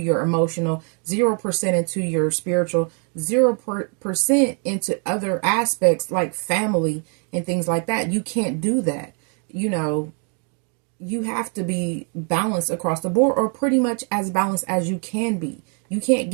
emotional, 0% into your spiritual, 0% into other aspects like family and things like that. You can't do that. You know, you have to be balanced across the board, or pretty much as balanced as you can be. You can't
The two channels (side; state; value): left; quieter; 39.8 dB